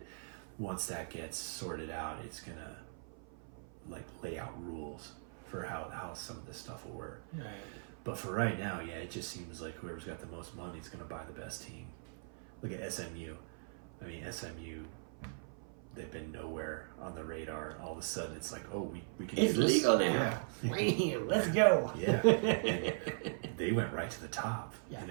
once that gets sorted out, it's going to like lay out rules for how some of this stuff will work. Right. But for right now, yeah, it just seems like whoever's got the most money is going to buy the best team. Look at SMU. I mean, SMU, they've been nowhere on the radar. All of a sudden, it's like, oh, we can It's do this. legal now. Yeah. Bam, let's go. Yeah. And they went right to the top Yeah.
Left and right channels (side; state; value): left; silent; 52 dB below the other